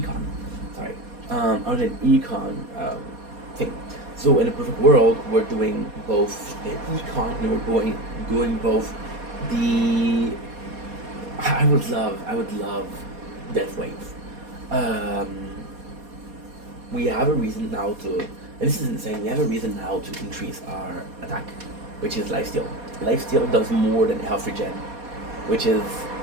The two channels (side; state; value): left; late; 4.2 ms